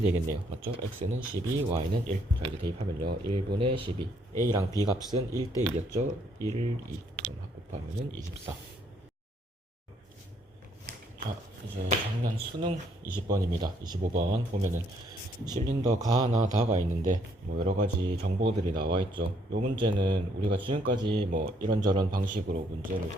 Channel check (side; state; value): both; normal; correlation 0.69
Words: 맞죠? x는 12, y는 1. 자, 이제 대입하면요. 1분의 12. a랑 b 값은 1대 2였죠? 1, 2. 그럼 곱하면은 24. 자, 이제 작년 수능 20번입니다. 25번 보면은 실린더 가 하나 다가 있는데 뭐 여러가지 정보들이 나와 있죠. 요 문제는 우리가 지금까지 뭐 이런저런 방식으로 문제를